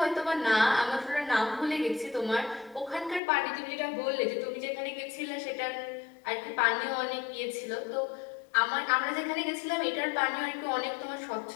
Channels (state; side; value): drops out; right; at 3.2 s